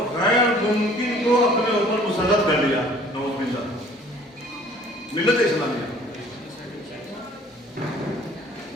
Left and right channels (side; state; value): both; normal; correlation 0.53